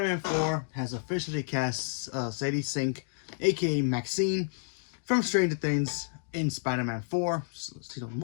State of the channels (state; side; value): silent; right; digital silence